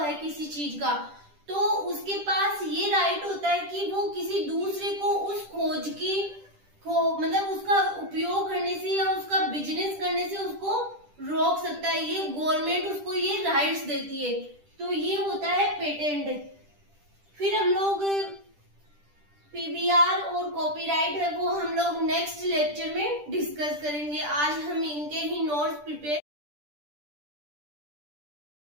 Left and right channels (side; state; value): left; late; 10 ms